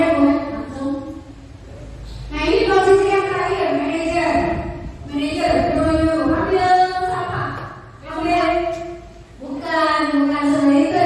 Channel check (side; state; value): both; identical; correlation 1.00